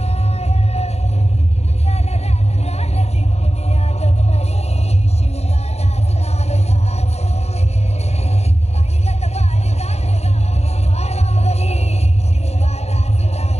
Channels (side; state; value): right; late; 0.31 ms